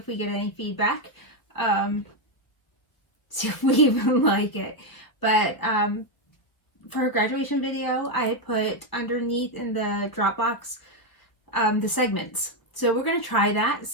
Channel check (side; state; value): right; late; 1.3 ms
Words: we get any feedback, see if we even like it. But for a graduation video, I had put underneath in the Dropbox the segments. So we're going to try that,